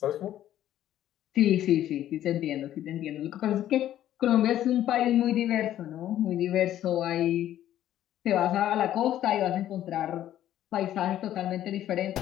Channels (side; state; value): right; quieter; 12.2 dB